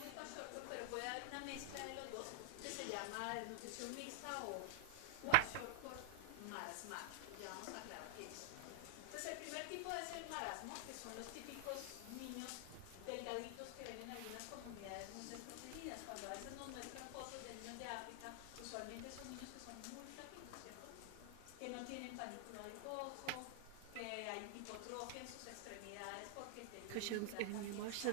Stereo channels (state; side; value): different; both; correlation -0.01